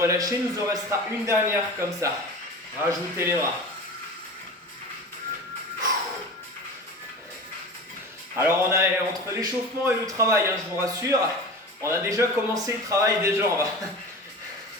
Il nous en restera une dernière comme ça. Rajoutez les bras. Alors on a entre l'échauffement et le travail, hein, je vous rassure, on a déjà commencé le travail des jambes.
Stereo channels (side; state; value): both; normal; correlation 0.33